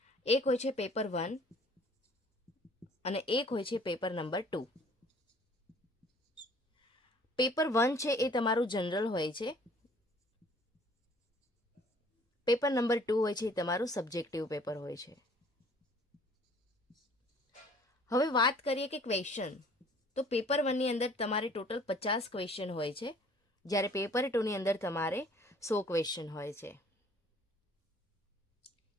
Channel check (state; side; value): normal; both; correlation 0.55